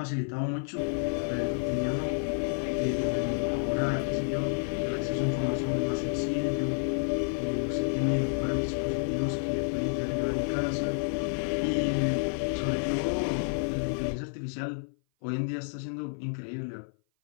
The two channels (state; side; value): silent; right; 56 dB below the other